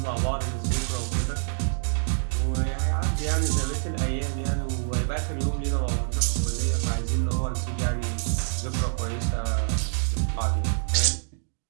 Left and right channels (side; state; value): left; silent; digital silence